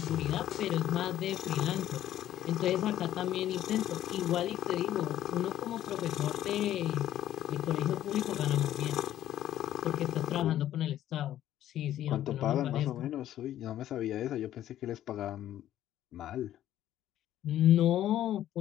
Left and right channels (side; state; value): right; quieter; 12.4 dB